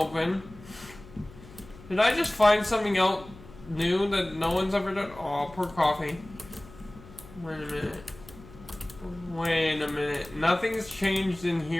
Did I just find something out new that no one's ever done? Oh, poor coffee. Wait a minute. Wait a minute. Nothing's changed in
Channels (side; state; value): left; noise; hum, 20 dB below the sound